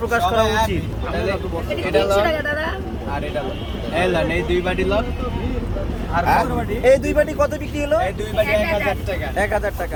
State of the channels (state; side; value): identical; both; correlation 1.00